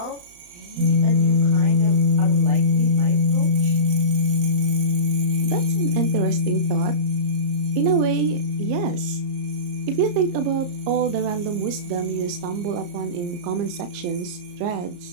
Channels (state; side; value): late; left; 34 ms